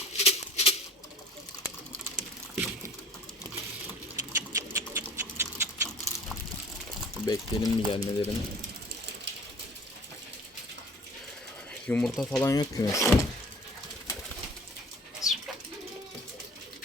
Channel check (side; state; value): both; normal; correlation 0.46